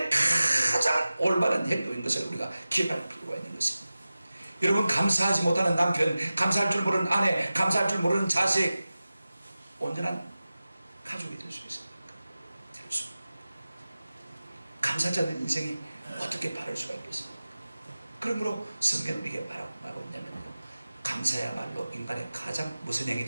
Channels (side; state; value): both; inverted; correlation -0.96